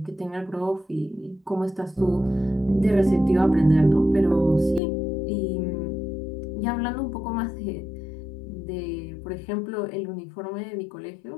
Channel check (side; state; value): right; drops out; at 4.8 s